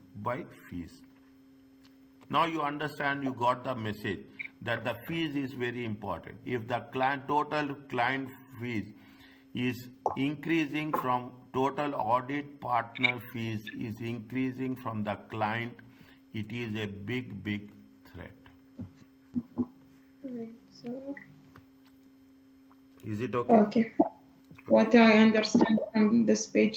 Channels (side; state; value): both; identical; correlation 1.00